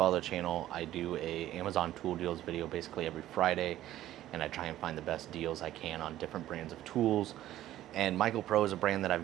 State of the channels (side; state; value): left; quieter; 13.7 dB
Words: the channel, I do a Amazon tool deals video basically every Friday. And I try and find the best deals I can on different brands of tools. And MichaelPro is a brand that